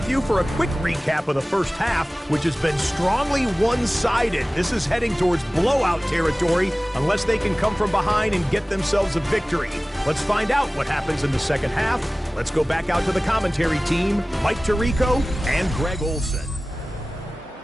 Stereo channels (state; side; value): normal; both; correlation 0.98